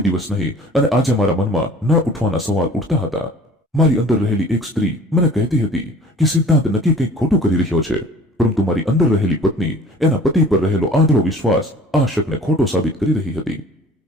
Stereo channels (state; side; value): normal; both; correlation 0.47